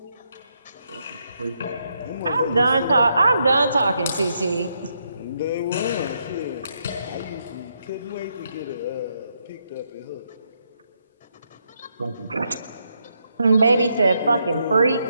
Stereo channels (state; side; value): inverted; both; correlation -0.79